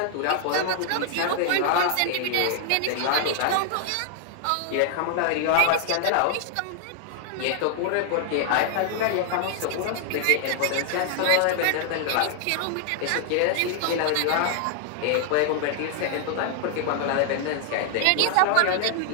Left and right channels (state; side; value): different; both; correlation 0.00